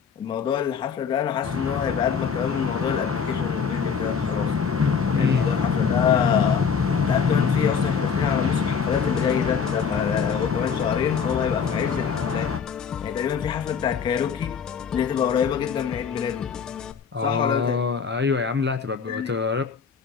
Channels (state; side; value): quieter; right; 6.5 dB